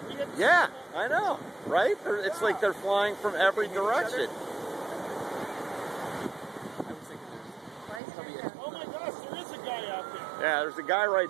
Yeah, I know, right? It's like they're flying from every direction. Oh my gosh, there is a guy out there. Yeah, there's a guy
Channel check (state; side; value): drops out; left; at 8.0 s